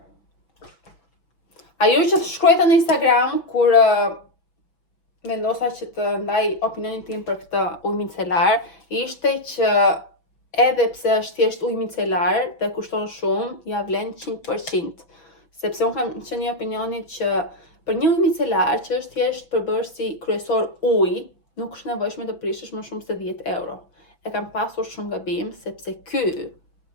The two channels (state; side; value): late; right; 6.1 ms